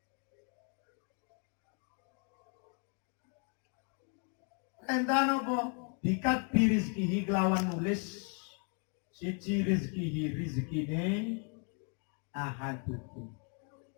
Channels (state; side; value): quieter; right; 39.2 dB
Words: Perintah nopo? Bikat birizkihi kelawan nulis siji rizkine ahadukum.